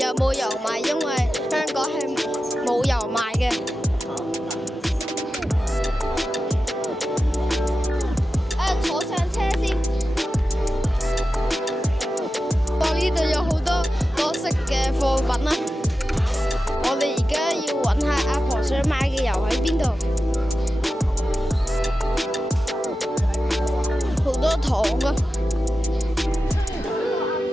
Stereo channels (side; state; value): both; normal; correlation 0.92